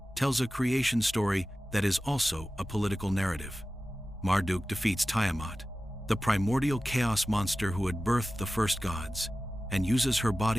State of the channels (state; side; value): normal; both; correlation 0.95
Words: tells a creation story that is also a political narrative. Marduk defeats Tiamat, the primordial chaos monster who had birthed the first gods, and uses her